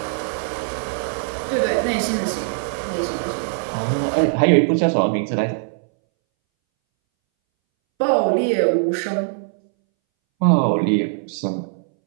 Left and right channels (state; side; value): silent; left; 63 dB below the other